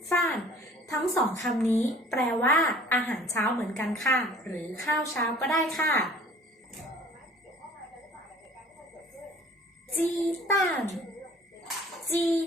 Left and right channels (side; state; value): both; normal; correlation 0.50